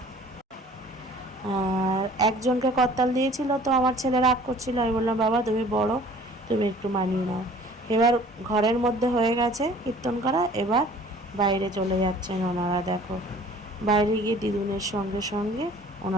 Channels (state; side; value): normal; both; correlation 0.50